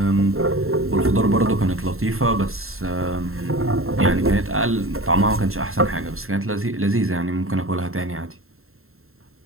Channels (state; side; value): late; left; 0.62 ms